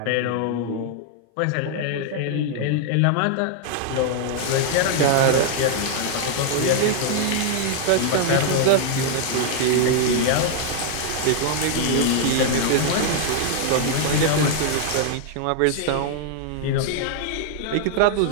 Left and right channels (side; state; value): both; different; correlation 0.00